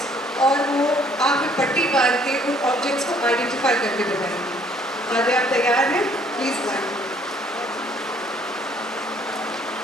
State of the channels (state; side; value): normal; both; correlation 0.61